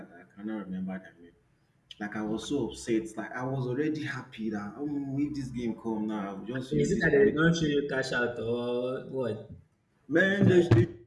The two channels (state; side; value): identical; both; correlation 1.00